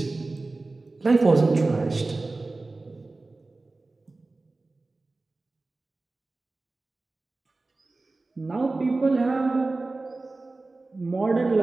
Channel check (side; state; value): left; quieter; 3.3 dB